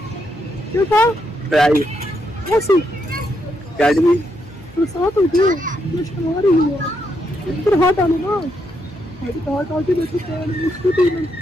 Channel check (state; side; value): normal; both; correlation 0.79